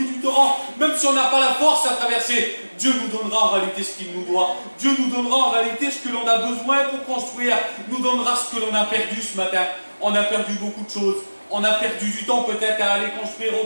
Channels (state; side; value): inverted; both; correlation -1.00